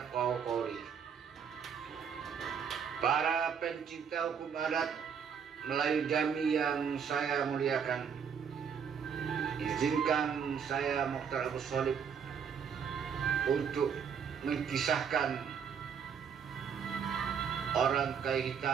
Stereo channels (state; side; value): quieter; left; 7.1 dB